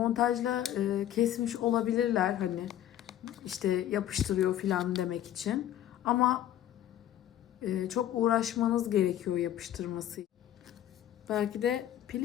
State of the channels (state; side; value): quieter; right; 11.8 dB